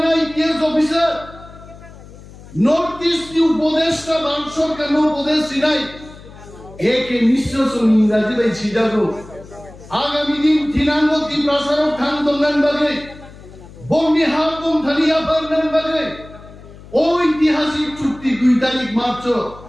आईपीएस ऑफिसर नॉर्थ ईस्ट की उपदेष्टा भारत सरकार नो उपदेश सिनाई एक मिश्र सुन इंग्रजी भाई सीधा को आगामी दिन थिनांगो ত্রিপ্রাসারক থান দঙ্গান বাগে বঙ্গি হাবম থালিয়া পারনান বাগে ঐতিহাসিক চুক্তি 2 তারিখ মার্চ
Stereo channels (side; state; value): left; noise; hum, 19 dB below the sound